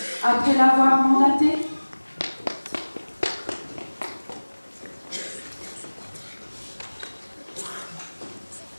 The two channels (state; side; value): inverted; both; correlation -1.00